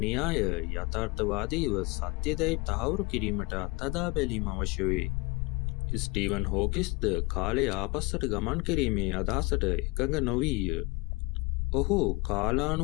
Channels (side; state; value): right; quieter; 24.9 dB